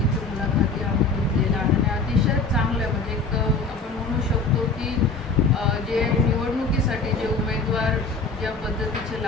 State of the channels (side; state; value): right; quieter; 3.9 dB